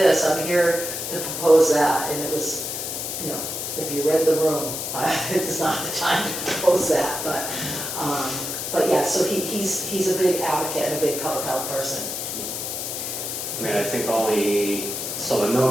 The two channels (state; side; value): noise; left; hiss, 4 dB below the sound